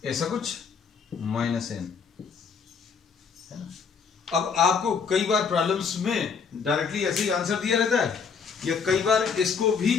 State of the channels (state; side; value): quieter; right; 5.9 dB